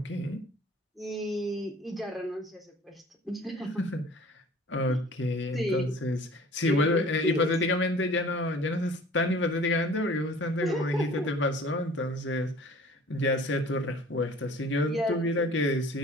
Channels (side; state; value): both; normal; correlation 0.48